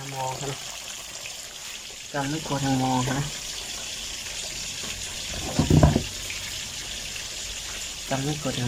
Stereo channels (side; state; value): both; identical; correlation 1.00